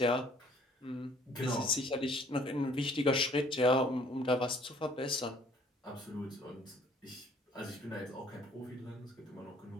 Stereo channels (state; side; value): normal; both; correlation 0.58